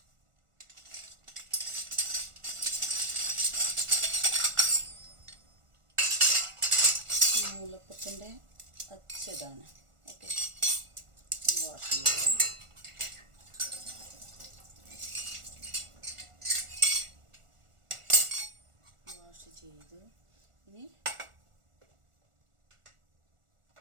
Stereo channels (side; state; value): left; late; 1.4 ms